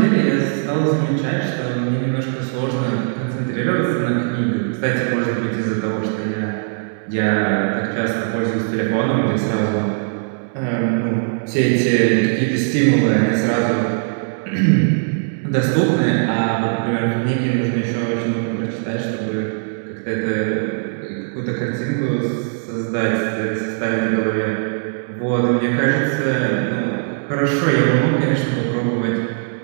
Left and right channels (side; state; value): left; silent; digital silence